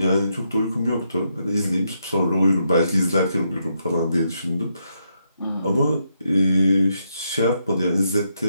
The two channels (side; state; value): both; inverted; correlation -0.79